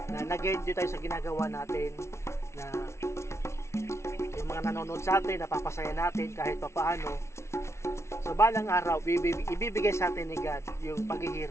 nag-enjoy tayo sa ginagawa natin. Na yung mga nanonood sa atin, napapasaya natin kahit papaano. So balang araw, ibibigay sa atin ni God yung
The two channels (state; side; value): late; right; 0.13 ms